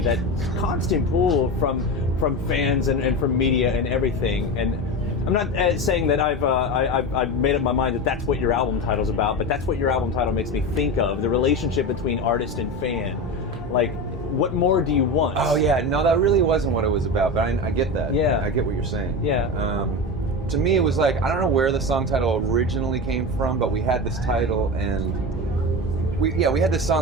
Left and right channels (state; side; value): normal; both; correlation 0.23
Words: that constant pull from fans and from media and everything. And I'm not saying that I've made up my mind that that's what your album title's about, but that's what your album title makes me think of, the relationship between artist and fan. Like, what more do you want? Oh yeah, no, that really wasn't what it was about, but I get that. Yeah. I get what you're saying. Yeah. To me, it was like, I don't know where the song title originally came from, but we had this title, and we had this